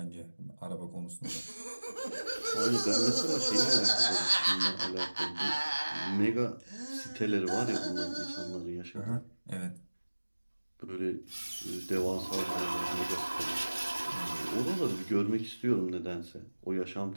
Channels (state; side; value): inverted; both; correlation -1.00